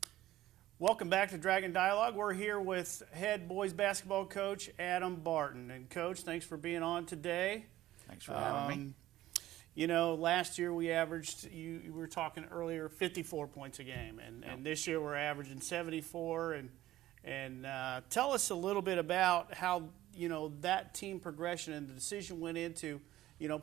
Welcome back to Dragon Dialogue. We're here with head boys basketball coach Adam Barton. And Coach, thanks for being on today. Thanks for having me. Last year we averaged, you were talking earlier, 54 points a game. And this year we're averaging 74. And tell us a little bit about how, that team progression and the decision went into,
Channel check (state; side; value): quieter; left; 14.9 dB